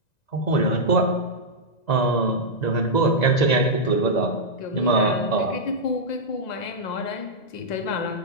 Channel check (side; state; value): right; late; 1.9 ms